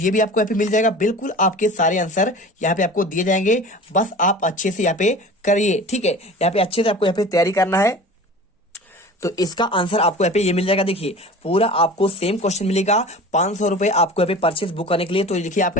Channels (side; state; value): both; normal; correlation 0.38